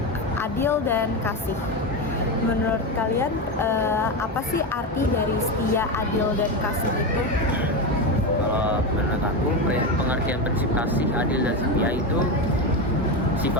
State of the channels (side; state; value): both; normal; correlation 0.15